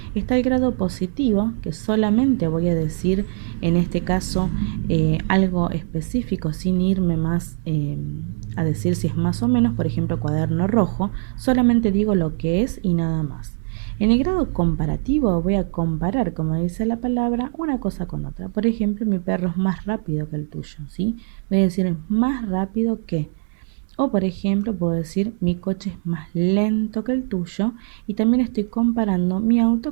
Está el grado positivo, que solamente voy a decir, en este caso, algo específico, sin irme más a decir si es más o menos. Por ejemplo, cuaderno rojo, solamente digo lo que es y nada más. En el grado comparativo voy a comparar, como dice la palabra, una cosa con otra. Por ejemplo, mi perro es más rápido que el tuyo, ¿sí? Voy a decir es más rápido que. O por ejemplo, puedo decir mi coche es más lento que el tuyo, y también estoy comparando mi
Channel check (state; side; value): silent; left; digital silence